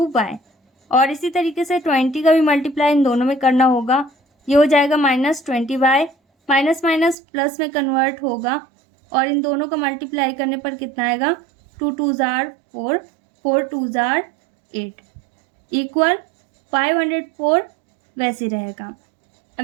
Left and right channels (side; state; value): left; drops out; at 7.2 s